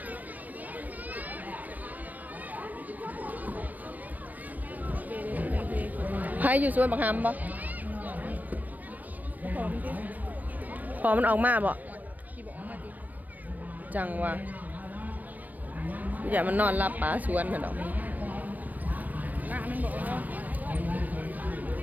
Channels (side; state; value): left; late; 0.082 ms